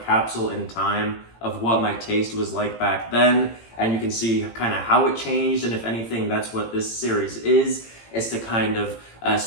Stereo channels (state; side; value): late; right; 18 ms